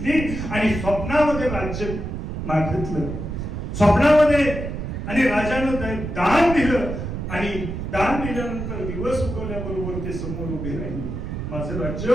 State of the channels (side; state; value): right; noise; rumble, 5 dB below the sound